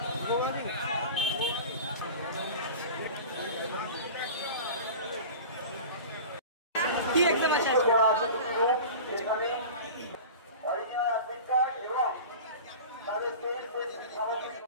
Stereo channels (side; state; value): both; inverted; correlation -0.36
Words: কি एग्जाम আছে এখানে অরিজিনাল অ্যাডমিট কার্ড এবং তাদের